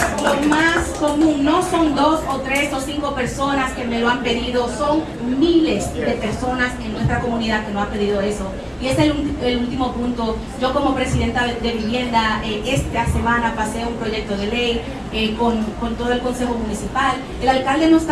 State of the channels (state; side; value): identical; both; correlation 1.00